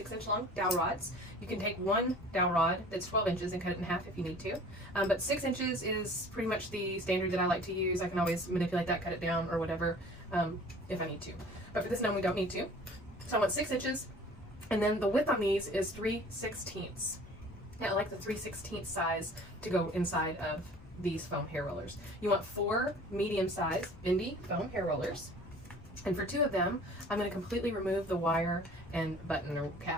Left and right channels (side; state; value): left; noise; rumble, 20 dB below the sound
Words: long dowel rods. You can take one dowel rod that's 12 inches and cut it in half if you need to. But 6 inches is pretty much the standard that I like to use. I can always manipulate that, cut it down or whatever if I need to. But for this gnome, we don't need to. So I want 6 inches, and then the width on these is 3/16. Yeah, I like the 3/16 size to go inside of these foam hair rollers. You want 4 medium-sized bendy foam hair rollers. And for 2 of them, I'm going to completely remove the wire and button or